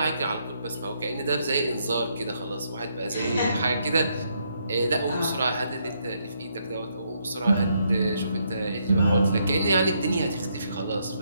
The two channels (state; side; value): inverted; both; correlation -0.75